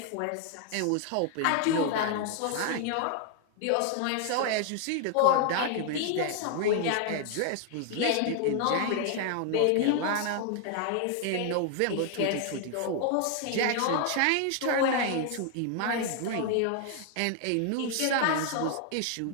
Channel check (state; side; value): different; both; correlation 0.00